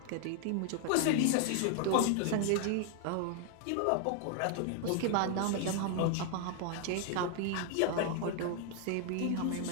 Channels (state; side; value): different; both; correlation 0.00